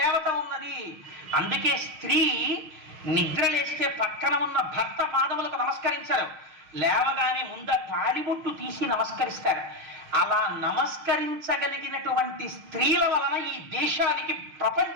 ఉన్నది. అందుకే స్త్రీ నిద్రలేస్తే పక్కన ఉన్న భర్త పాదములకు నమస్కరించారు, లేవగానే ముంద తాళిబొట్టు తీసి నమస్కరిస్తారు. అలా నమస్కరించగలిగినటువంటి స్త్రీల వలన ఈ దేశానికి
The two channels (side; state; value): left; late; 6.4 ms